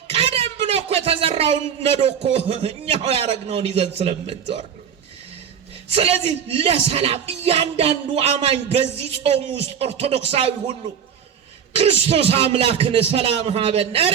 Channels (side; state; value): left; quieter; 8.0 dB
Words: ቀደም ብሎ እኮ የተዘራውን ነዶ እኮ እኛው ያረግነውን ይዘን ስለምንዞር። ስለዚህ ለሰላም እያንዳንዱ አማኝ በዚህ ጾም ውስጥ ኦርቶዶክሳዊ ሁሉ ክርስቶስ አምላክን ሰላም ሀበነ፣